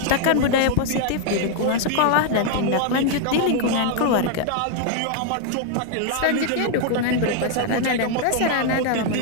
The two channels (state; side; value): different; both; correlation 0.00